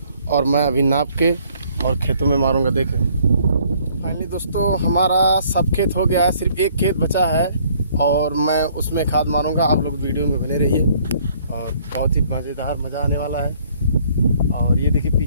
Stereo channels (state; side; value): inverted; both; correlation -0.61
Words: और मैं अभी नाप के और खेतों में मारूंगा। देखें फाइनली दोस्तों हमारा सब खेत हो गया है, सिर्फ एक खेत बचा है और मैं उसमें खाद मारूंगा। आप लोग वीडियो में बने रहिए और बहुत ही मज़ेदार मज़ा आने वाला है। और ये देखिए